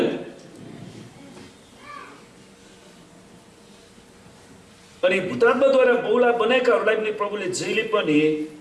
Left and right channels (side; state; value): both; identical; correlation 1.00